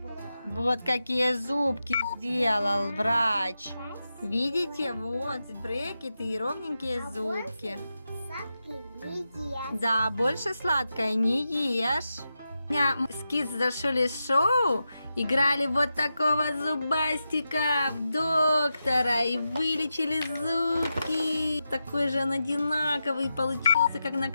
Вот какие зубки сделал врач. Спасибо. Видите, вот брекеты и ровненькие зубки. Сладкий не ест. Да, больше сладкое не ешь. У меня с Kids Дашули шоу играли вот такого зубастика в доктора и вылечили зубки. Такой же он одинаковый получился, как на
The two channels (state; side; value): inverted; both; correlation -0.89